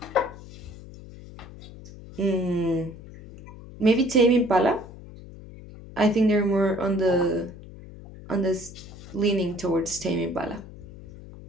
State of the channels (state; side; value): noise; left; hum, 16 dB below the sound